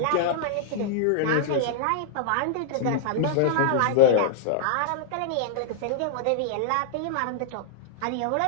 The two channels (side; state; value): both; different; correlation -0.01